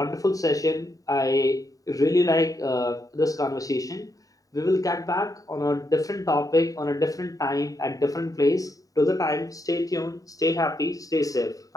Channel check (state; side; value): late; right; 0.17 ms